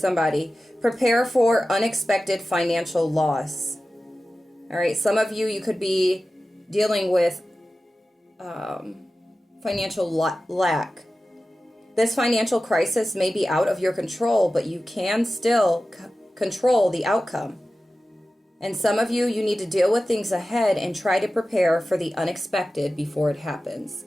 Prepare for unexpected financial loss. All right? Some of you, you could be dealing with financial lack. This financial crisis may be out of your control, but you can still control the outcome. And some of you, you need to deal with things ahead and try to prepare for the unexpected before it happens.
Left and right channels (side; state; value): both; normal; correlation 0.95